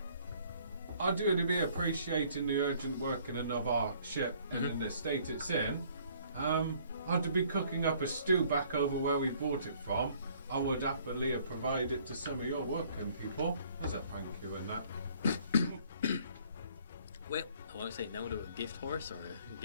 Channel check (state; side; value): inverted; both; correlation -0.59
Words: do be appreciating the urgent working of our ship and in the state it's in. I do be cooking up a stew back over where we bought it from. I would happily provide it to some of your working people as a thank you in that. Well, I won't say no to a gift horse or a